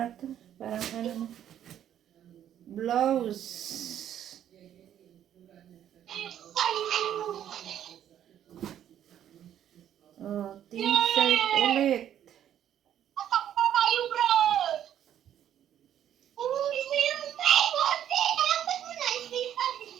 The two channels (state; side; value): quieter; left; 10.5 dB